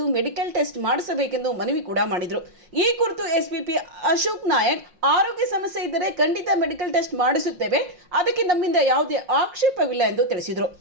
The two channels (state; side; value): late; left; 5.5 ms